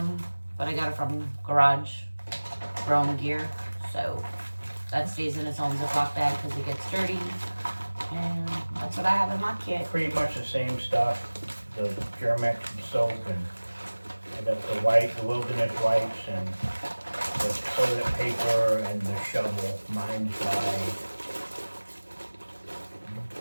but I got it from Garage Grooming Gear. So that stays in its own Ziploc bag because it gets dirty. And that's what I have in my kit. Pretty much the same stuff. The Germex soap, and I got the wilderness wipes, and the toilet paper, and the shovel. Mine's by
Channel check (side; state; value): both; inverted; correlation -1.00